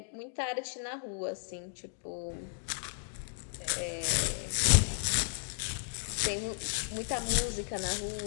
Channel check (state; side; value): silent; right; digital silence